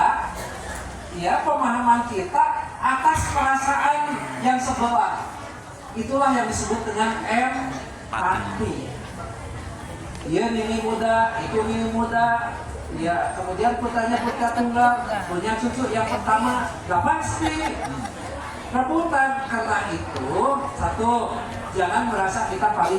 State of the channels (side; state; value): both; identical; correlation 1.00